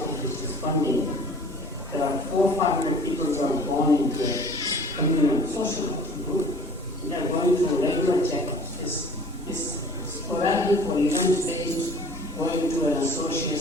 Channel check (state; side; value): normal; both; correlation 0.47